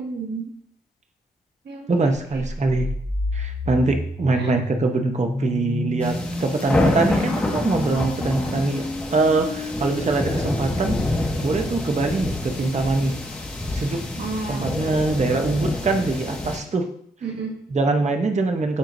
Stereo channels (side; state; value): both; normal; correlation 0.74